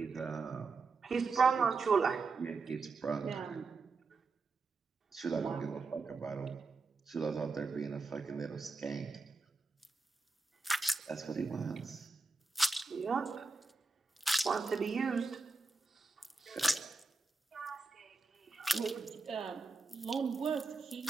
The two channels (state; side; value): quieter; left; 4.0 dB